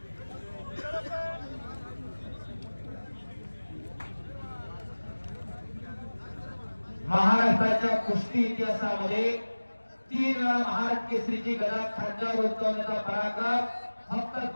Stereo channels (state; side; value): inverted; both; correlation -1.00